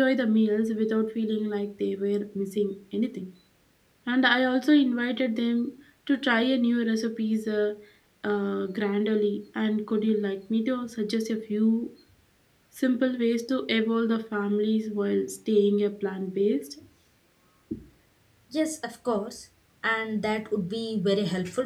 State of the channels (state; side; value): identical; both; correlation 1.00